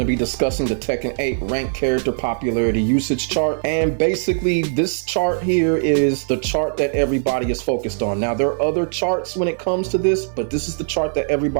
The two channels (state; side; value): silent; left; 57 dB below the other